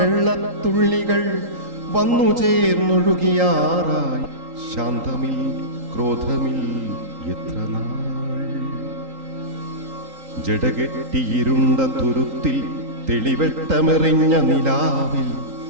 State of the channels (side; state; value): left; late; 3.8 ms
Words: വന്നു ചേർന്നൊഴുകിയാറായി ശാന്തമിൽ ക്രോധമിൽ എത്ര നാൾ ജടകെട്ടിയിരുണ്ട തുരുത്തിൽ തെളിവെട്ടമെറിഞ്ഞ നിലാവിൽ